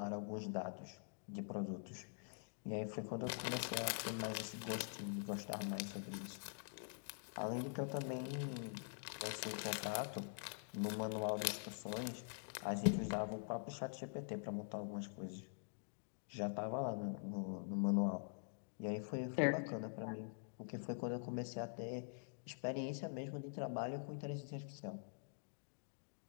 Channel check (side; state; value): right; silent; digital silence